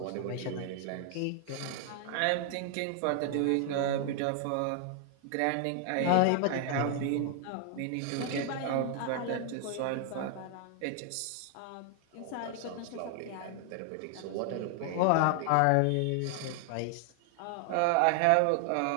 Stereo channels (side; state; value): both; different; correlation 0.00